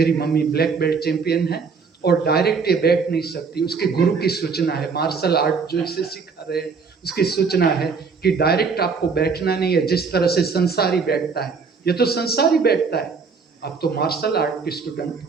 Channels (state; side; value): quieter; left; 5.2 dB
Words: मम्मी ब्लैक बेल्ट चैंपियन है और डायरेक्ट ये बैठ नहीं सकती, उसके गुरु की सूचना है, मार्शल आर्ट जो इसे सिखा रहे हैं उसकी सूचना है कि डायरेक्ट आपको बैठना नहीं है, जिस तरह से संसारी बैठता है। ये तो संसारी बैठता है, आप तो मार्शल आर्ट के स्टूडेंट हो।